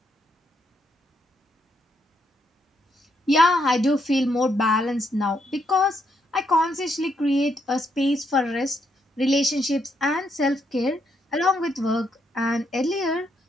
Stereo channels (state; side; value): normal; both; correlation 0.77